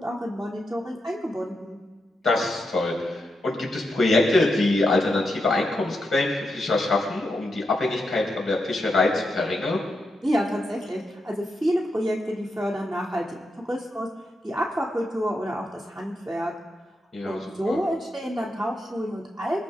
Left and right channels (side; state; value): both; normal; correlation 0.85